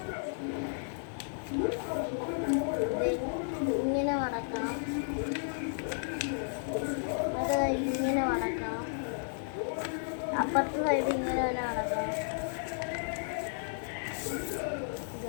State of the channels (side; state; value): right; silent; 56 dB below the other